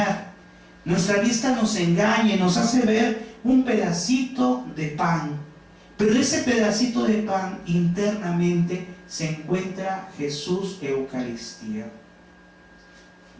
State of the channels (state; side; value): identical; both; correlation 1.00